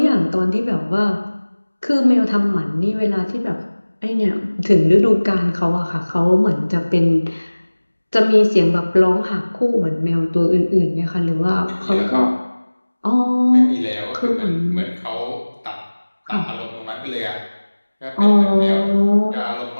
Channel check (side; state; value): both; inverted; correlation -1.00